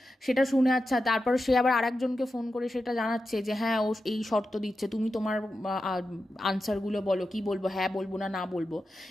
সেটা শুনে, আচ্ছা, তারপর সে আবার আরেকজনকে ফোন করে সেটা জানাচ্ছে যে হ্যাঁ ও এই শর্ত দিচ্ছে, তুমি তোমার আনসারগুলো বলো, কি বলবো, হ্যাঁ বলবো না বলবো।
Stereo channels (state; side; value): normal; both; correlation 0.90